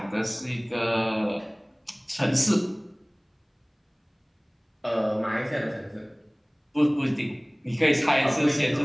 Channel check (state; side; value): identical; both; correlation 1.00